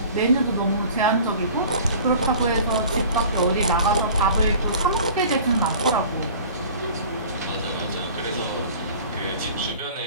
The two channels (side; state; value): both; inverted; correlation -0.44